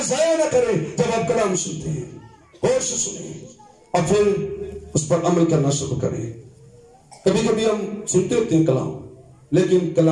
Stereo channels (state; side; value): identical; both; correlation 1.00